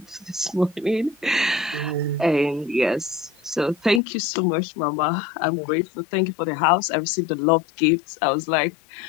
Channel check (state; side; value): drops out; right; at 4.0 s